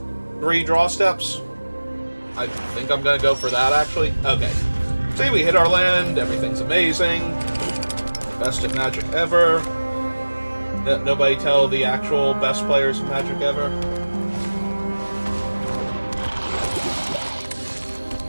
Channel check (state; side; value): inverted; both; correlation -1.00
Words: 3 draw steps. I think I'm gonna go for that, actually. Okay. See, we hit our land, everything's amazing. Best at Magic ever. Nobody tell the actual best players of Magic ever.